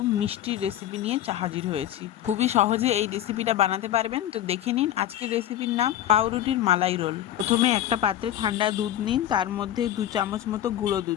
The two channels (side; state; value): right; quieter; 12.1 dB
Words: মিষ্টির রেসিপি নিয়ে হাজির হয়েছি। খুবই সহজে এই রেসিপিটা বানাতে পারবেন। তো দেখে নিন আজকের রেসিপির নাম পাউরুটির মালাই রোল। প্রথমে একটা পাত্রে ঠান্ডা দুধ নিন, তার মধ্যে 2 চামচ মতো গুঁড়ো